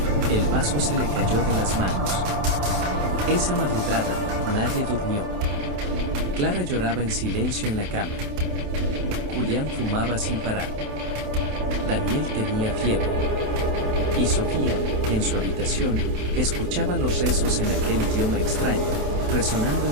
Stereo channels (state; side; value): late; left; 27 ms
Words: El vaso se le cayó de las manos. Esa madrugada, nadie durmió. Clara lloraba en silencio en la cama. Julián fumaba sin parar. Daniel tenía fiebre. Y Sofía, en su habitación, escuchaba los rezos en aquel idioma extraño, resonando